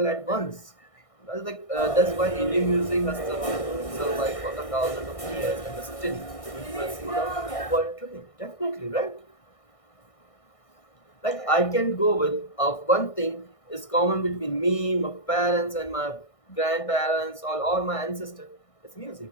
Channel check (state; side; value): late; right; 1.6 ms